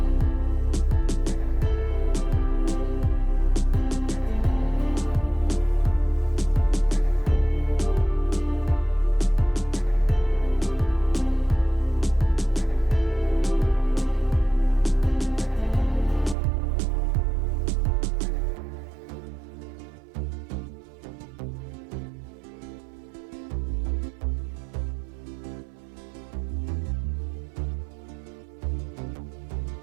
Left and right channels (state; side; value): drops out; left; at 16.4 s